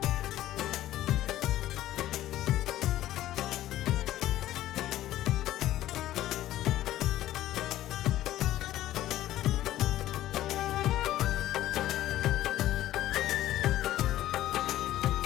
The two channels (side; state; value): right; quieter; 14.0 dB